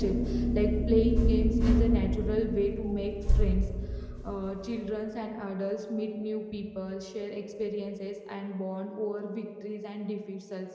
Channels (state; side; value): identical; both; correlation 1.00